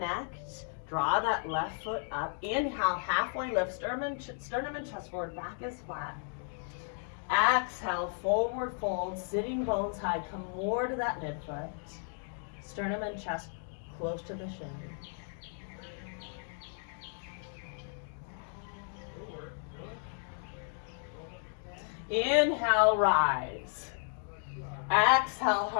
Draw that left foot up. Inhale, halfway lift. Sternum and chest forward. Back is flat. Exhale, forward fold. Sitting bones high. Come more to that midfoot. Sternum and chest close to the shin. Inhale, rise. Exhale,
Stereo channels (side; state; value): right; silent; 55 dB below the other